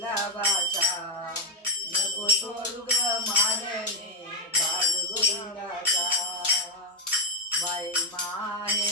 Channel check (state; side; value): normal; both; correlation 0.03